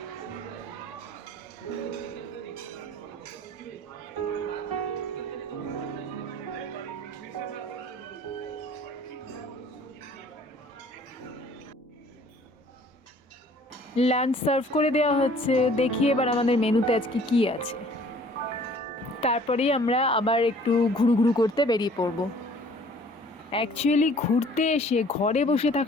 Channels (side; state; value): both; normal; correlation 0.54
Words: লাঞ্চ সার্ভ করে দেওয়া হচ্ছে। দেখি এবার আমাদের মেনুতে আজকে কি আছে, তারপরেই আমরা আবার একটু ঘুরু করতে বেরিয়ে পড়ব। অ্যাকচুয়ালি ঘুরতে এসে ঘরে বসে